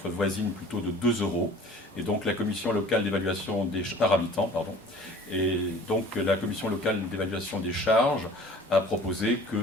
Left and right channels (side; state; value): both; normal; correlation 0.47